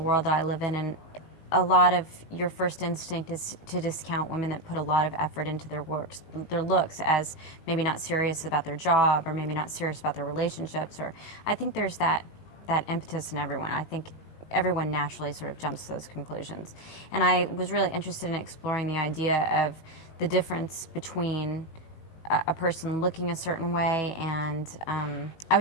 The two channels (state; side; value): late; right; 19 ms